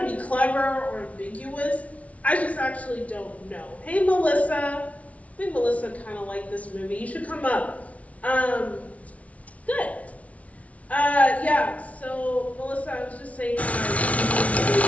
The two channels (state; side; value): late; right; 0.066 ms